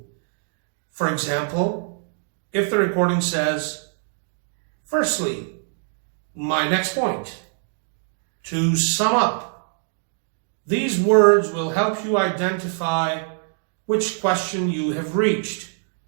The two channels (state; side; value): silent; left; 63 dB below the other